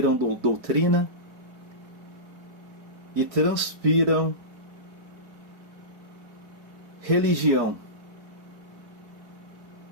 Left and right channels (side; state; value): left; late; 4.7 ms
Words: doutrina e transpiram religião.